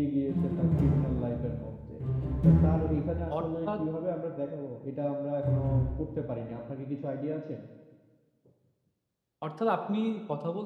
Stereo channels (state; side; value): identical; both; correlation 1.00